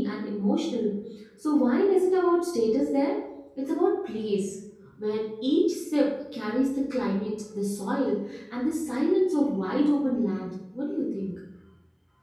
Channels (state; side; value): identical; both; correlation 1.00